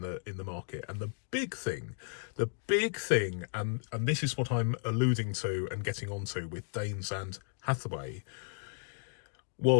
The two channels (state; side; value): silent; right; 55 dB below the other